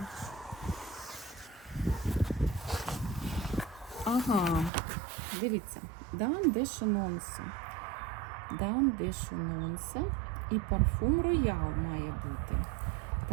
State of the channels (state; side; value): drops out; left; at 4.7 s